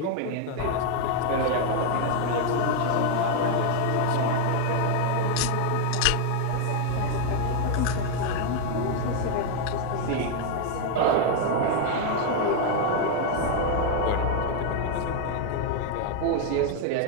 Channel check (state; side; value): different; both; correlation 0.00